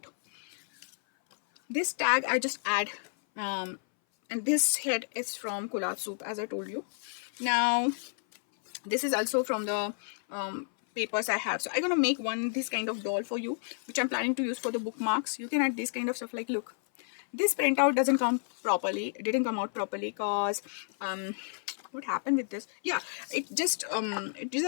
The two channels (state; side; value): silent; right; 57 dB below the other